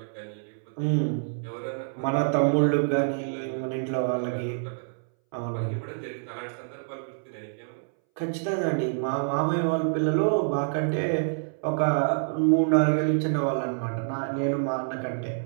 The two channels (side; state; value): left; silent; 60 dB below the other